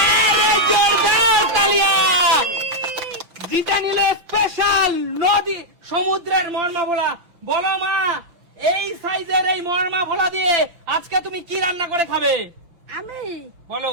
জোরদার তালিয়া। জিতে নিলে স্পেশাল নদী সমুদ্রের মরমা ভোলা। বলো মা, এই সাইজের এই মরমা ভোলা দিয়ে আজকে তুমি কি রান্না করে খাবে? আমি বলো।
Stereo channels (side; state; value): left; late; 5.9 ms